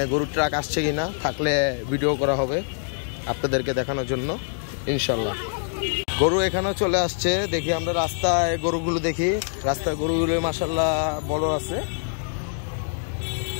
গরুর ট্রাক আসছে কিনা, থাকলে ভিডিও করা হবে আপনাদেরকে দেখানোর জন্য ইনশাল্লাহ। গরু এখানেও চলে আসছে, দেখি আমরা রাস্তায় গরুগুলো দেখি। রাস্তায় গরুগুলো মাশাআল্লাহ বড় আছে,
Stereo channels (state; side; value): silent; right; digital silence